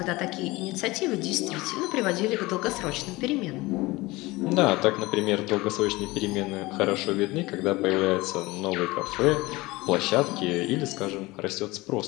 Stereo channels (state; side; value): quieter; right; 21.2 dB